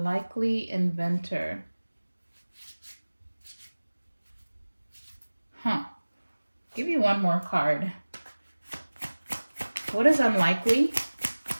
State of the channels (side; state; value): both; inverted; correlation -1.00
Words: inventor. Huh. Give me one more card. What is unlikely?